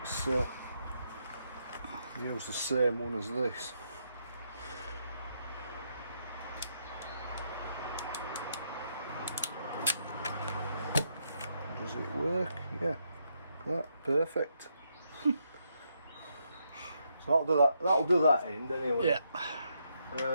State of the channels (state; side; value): inverted; both; correlation -0.78